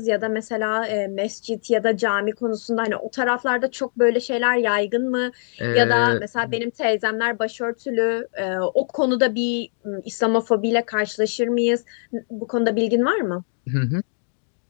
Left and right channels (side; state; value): right; silent; digital silence